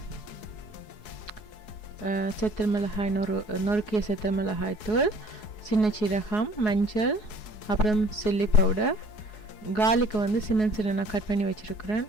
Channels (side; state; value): right; late; 4.7 ms